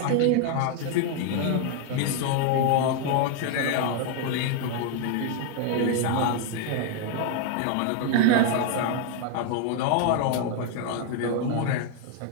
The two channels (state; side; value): different; both; correlation 0.01